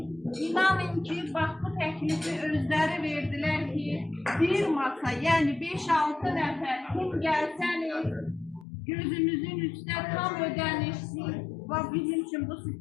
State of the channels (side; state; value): right; drops out; at 8.7 s